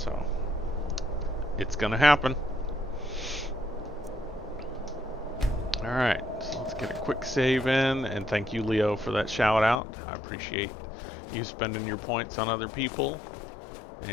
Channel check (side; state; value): right; drops out; at 9.8 s